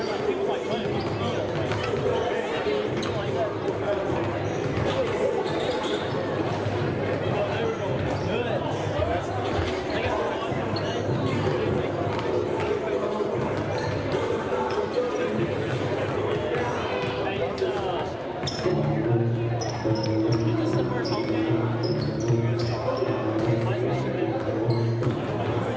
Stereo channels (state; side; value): identical; both; correlation 1.00